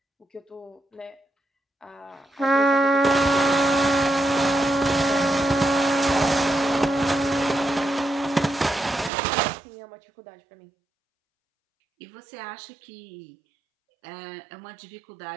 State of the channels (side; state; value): left; drops out; at 9.1 s